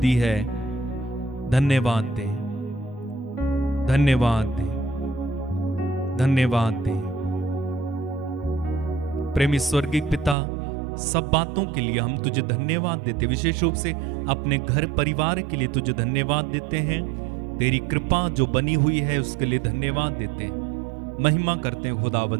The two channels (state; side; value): drops out; left; at 10.4 s